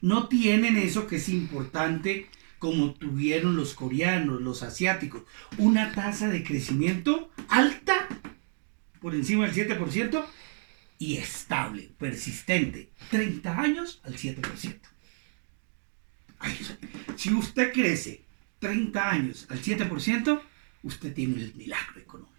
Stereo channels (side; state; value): left; silent; digital silence